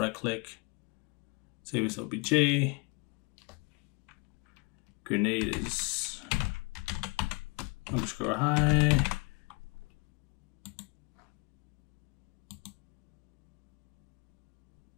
click, save as OBJ. grenade is underscore high.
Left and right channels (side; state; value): right; quieter; 27.4 dB